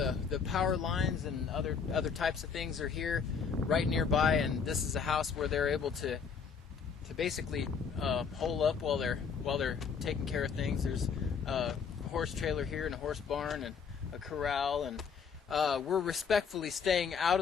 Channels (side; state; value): right; quieter; 6.1 dB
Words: power lines and other types of things are here, right nearby. And this is a house where they're able to basically hole up while they're taking care of things. There's a horse trailer here and a horse barn and a corral, and we're respectfully staying out